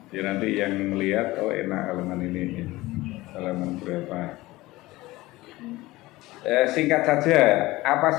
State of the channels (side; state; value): right; quieter; 19.2 dB